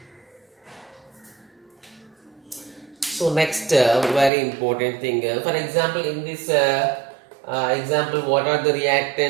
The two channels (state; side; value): drops out; left; at 4.3 s